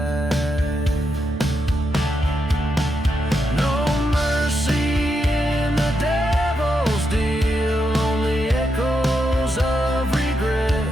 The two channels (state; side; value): normal; both; correlation 0.83